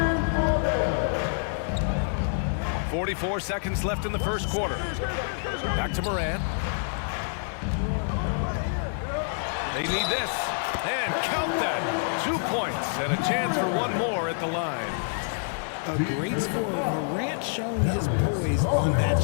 for them. 44 seconds left in the first quarter. Back to Morant. They need this. And count that. 2 points and a chance for one more at the line. A great scorer. Morant showing his poise on that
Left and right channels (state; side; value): silent; right; digital silence